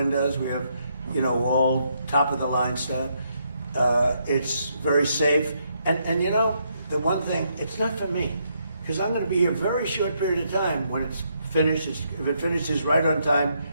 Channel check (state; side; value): inverted; both; correlation -0.76